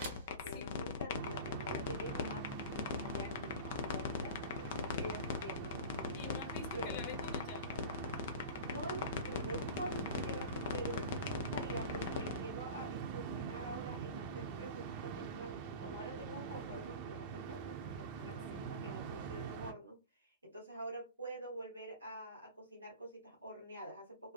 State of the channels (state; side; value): inverted; both; correlation -0.33